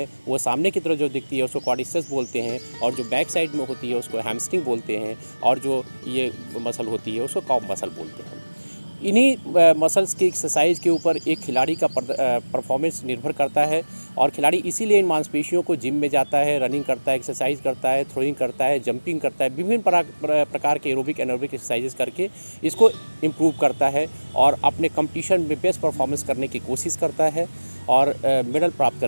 वो सामने की तरफ जो दिखती है उसको क्वाड्रिसेप्स बोलते हैं, और जो बैक साइड में होती है उसको हैमस्ट्रिंग बोलते हैं, और जो ये मसल होती है उसको कॉफ मसल बोलते हैं। इन्हीं मसल्स की एक्सरसाइज के ऊपर एक खिलाड़ी का परफॉर्मेंस निर्भर करता है, और खिलाड़ी इसीलिए इन मांसपेशियों को जिम में जाता है, रनिंग करता है, एक्सरसाइज करता है, थ्रोइंग करता है, जंपिंग करता है, विभिन्न प्रकार के एरोबिक एनारोबिक एक्सरसाइजेस करके इसको इम्प्रूव करता है और अपने कंपटीशन में बेस्ट परफॉर्मेंस करने की कोशिश करता है और मेडल प्राप्त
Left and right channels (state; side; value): inverted; both; correlation -1.00